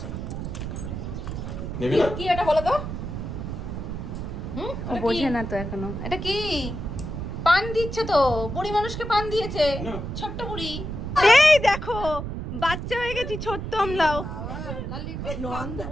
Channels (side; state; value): right; noise; rumble, 5 dB below the sound